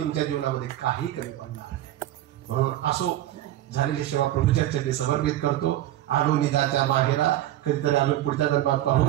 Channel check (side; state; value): left; quieter; 13.7 dB